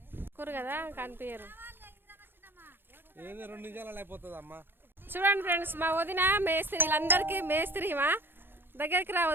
కూరు కదా కనిపించరు. చూడండి ఫ్రెండ్స్, మా వదిన మేస్త్రి, వీళ్ళందరికీ మేస్త్రి. మా దగ్గరికి రా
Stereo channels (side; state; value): left; late; 0.10 ms